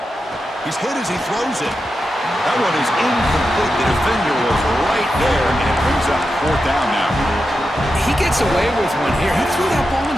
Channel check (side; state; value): both; normal; correlation 0.89